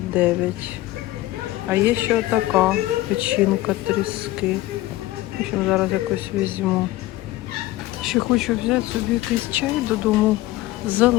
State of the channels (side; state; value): right; quieter; 17.0 dB